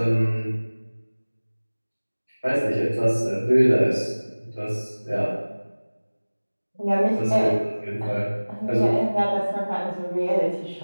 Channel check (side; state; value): both; inverted; correlation -1.00